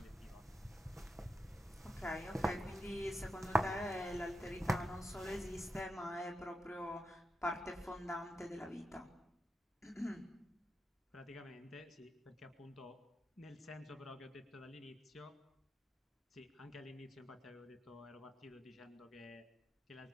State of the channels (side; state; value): both; normal; correlation 0.87